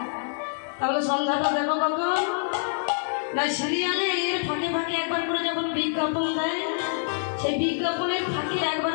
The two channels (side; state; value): right; silent; digital silence